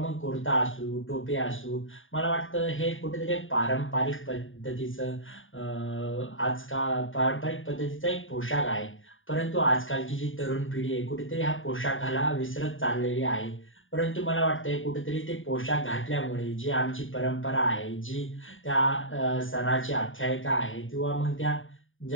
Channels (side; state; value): right; late; 0.57 ms